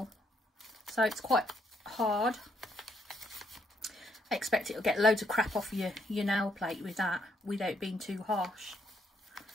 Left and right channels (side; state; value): both; normal; correlation 0.73